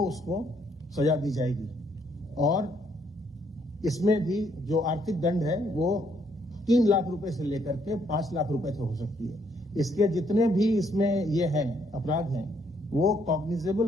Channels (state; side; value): normal; both; correlation 0.70